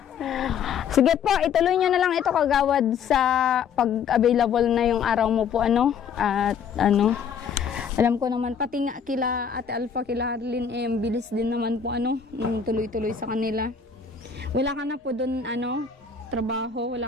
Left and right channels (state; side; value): quieter; right; 6.8 dB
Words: Sige po, ituloy nyo na lang ito, Kagawad, sa pag-available na yung araw mo po, at alam ko naman, pati nga kila Ate Alpha, kila Harlin, bilis din naman po, nung tuloy-tuloy sa kanila. Wala ka na po doon, trabaho,